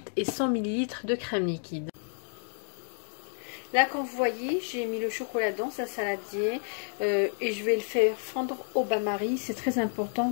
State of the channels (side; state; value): right; silent; 58 dB below the other